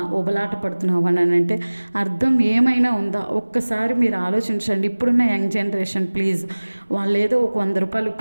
ఉబలాట పడుతున్నావు అని అంటే అర్థం ఏమైనా ఉందా? ఒక్కసారి మీరు ఆలోచించండి. ఇప్పుడున్న యంగ్ జనరేషన్ ప్లీజ్, వాళ్ళు ఏదో ఒక 100 రూపాయలు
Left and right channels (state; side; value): inverted; both; correlation -1.00